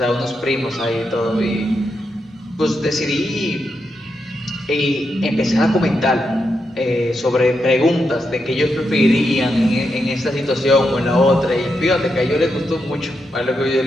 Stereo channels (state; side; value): normal; both; correlation 0.84